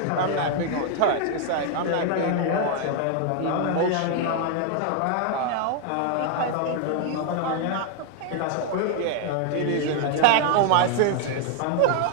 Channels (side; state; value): both; different; correlation 0.00